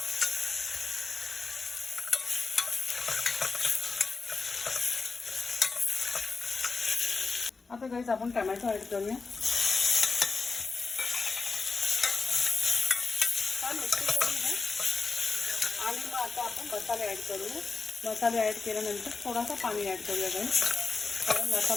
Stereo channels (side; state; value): right; quieter; 4.4 dB